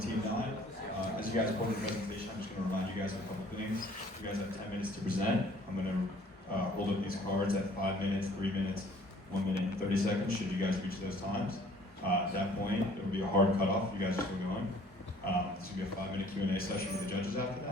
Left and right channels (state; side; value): normal; both; correlation 0.55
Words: 9. As you guys go into the presentation, I'm just going to remind you guys of a couple things. You guys have 10 minutes to present. I'm going to hold up these cards at 5 minutes, 3 minutes, 1 minute, and 30 seconds should you guys reach those times. At that point, there will be a hard cutoff. You guys are still going. This will be a 5-minute Q&A session with the judges after